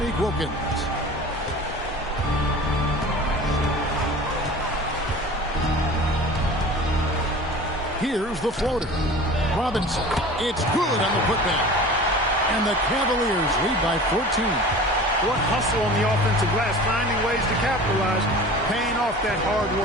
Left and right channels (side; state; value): both; normal; correlation 0.39